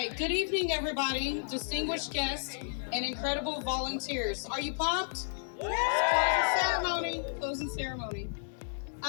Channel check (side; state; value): right; silent; digital silence